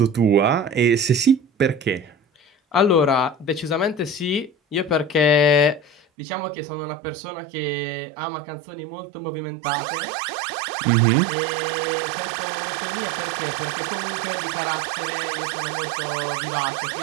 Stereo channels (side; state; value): left; drops out; at 6.0 s